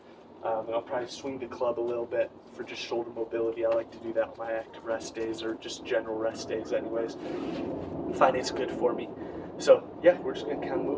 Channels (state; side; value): identical; both; correlation 1.00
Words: And I'll probably swing the club a little bit for just shoulder mobility. I like to do that on my active rest days or just general rest days anyways. I find it's good for me. So yeah, we're just going to kind of